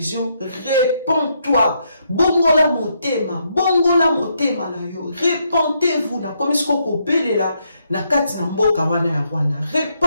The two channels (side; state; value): both; inverted; correlation -0.76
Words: réponds-toi bongola motema na yo répentez-vous na komi sko kobelela na kati na mboka wana ya Rwanda